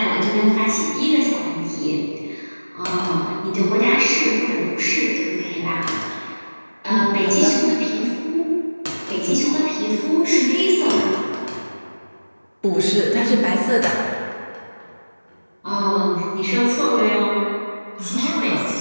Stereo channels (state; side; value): inverted; both; correlation -1.00